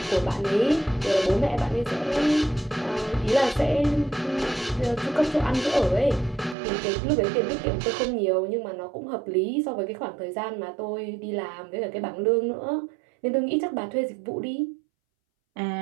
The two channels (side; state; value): left; drops out; at 6.6 s